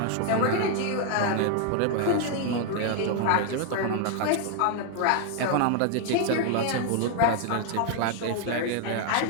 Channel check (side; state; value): both; different; correlation 0.00